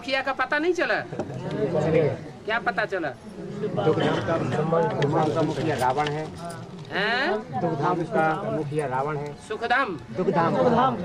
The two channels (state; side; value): identical; both; correlation 1.00